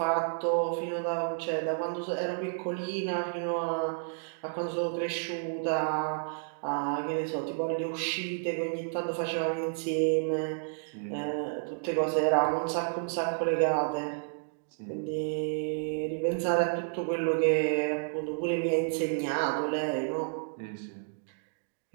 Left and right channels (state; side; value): silent; left; digital silence